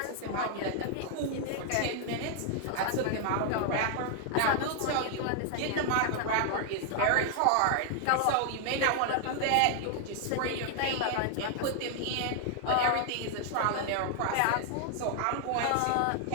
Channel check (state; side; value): different; both; correlation 0.00